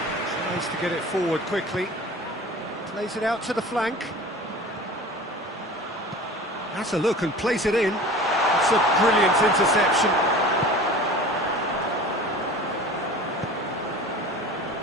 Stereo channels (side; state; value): both; normal; correlation 0.40